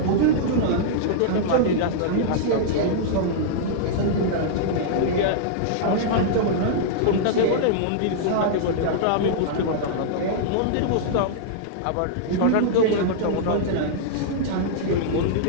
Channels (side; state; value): both; different; correlation -0.02